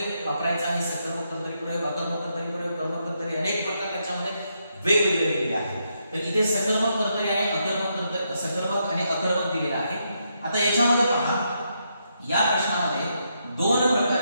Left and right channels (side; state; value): both; inverted; correlation -0.80